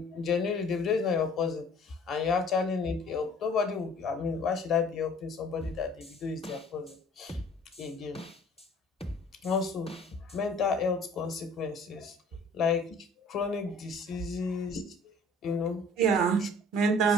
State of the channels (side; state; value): both; normal; correlation 0.51